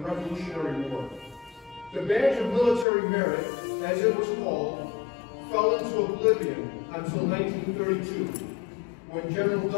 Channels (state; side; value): drops out; right; at 2.9 s